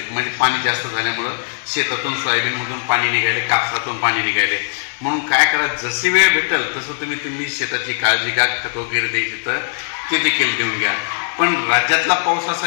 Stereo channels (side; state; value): right; silent; 67 dB below the other